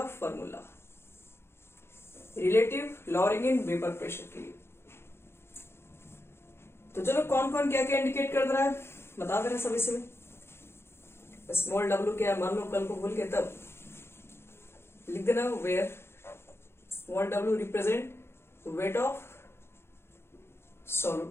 formula relative lowering in vapour pressure के लिए। तो चलो कौन कौन क्या क्या इंडिकेट कर रहा है बता दे रहे सब इसमें। स्मॉल w क्या है, मान लो कल को भूल के तब लिख देना where small w represent weight of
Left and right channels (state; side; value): late; right; 0.12 ms